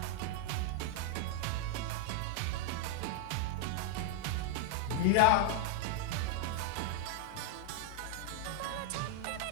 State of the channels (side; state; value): both; different; correlation -0.01